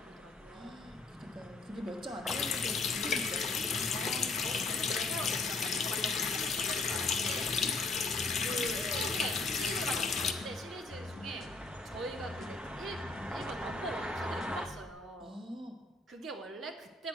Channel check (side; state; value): right; quieter; 3.5 dB